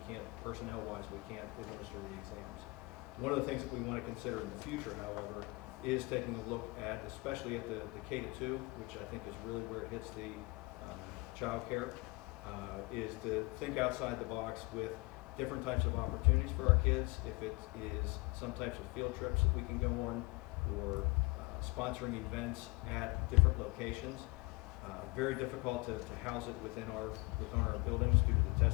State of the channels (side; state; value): right; quieter; 26.2 dB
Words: can't, personnel-wise, we can't administer the exams. One of the things that we want to consider in the future, however, is taking a look at, especially at the K-2, which I think is really where it hits the child care, is to think outside the box with different types of opportunities for our kids. If it is some types of field trips that we can go on, or sponsoring events at different locations. Very difficult to house it within our buildings due to the